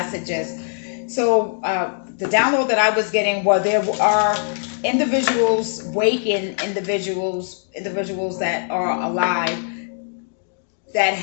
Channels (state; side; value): silent; right; digital silence